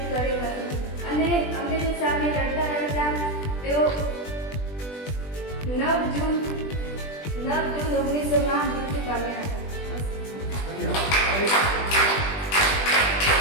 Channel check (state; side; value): late; right; 20 ms